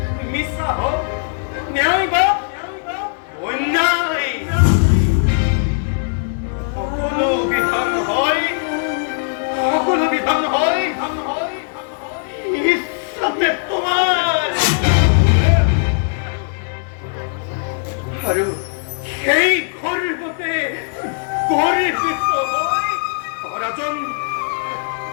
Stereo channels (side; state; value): right; silent; digital silence